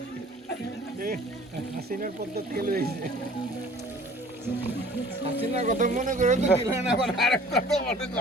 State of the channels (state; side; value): normal; both; correlation 0.49